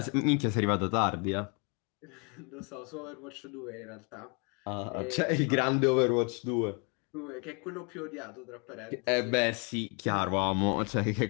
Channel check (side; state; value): right; quieter; 34.7 dB